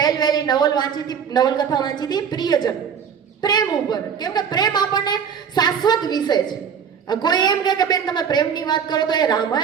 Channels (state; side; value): quieter; left; 7.4 dB